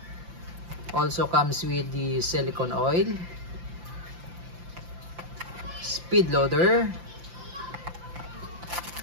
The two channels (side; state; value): left; late; 5.8 ms